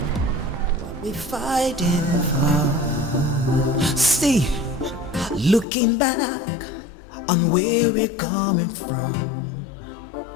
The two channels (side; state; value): right; drops out; at 5.7 s